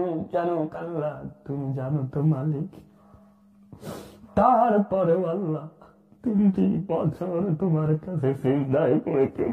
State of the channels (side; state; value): both; identical; correlation 1.00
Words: জানো আল্লাহ, তুমি জানো তো মালিক। তারপরেও আল্লাহ 3টি বছর তোমার কাছে সিজদায় পড়ে